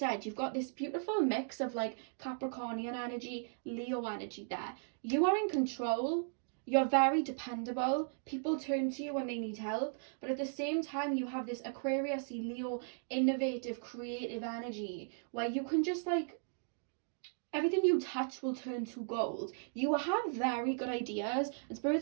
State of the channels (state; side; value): silent; left; digital silence